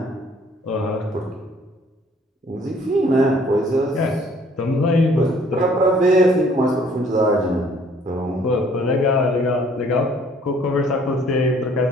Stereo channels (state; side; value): normal; both; correlation 0.59